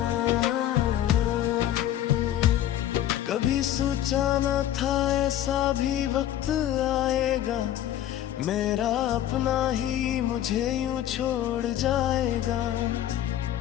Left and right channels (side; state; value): right; quieter; 12.1 dB